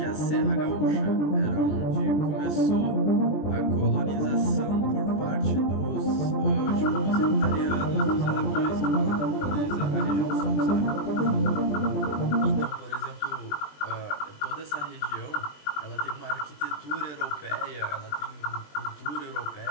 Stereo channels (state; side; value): late; right; 20 ms